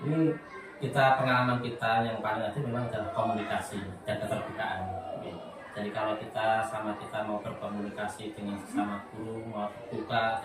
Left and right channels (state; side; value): identical; both; correlation 1.00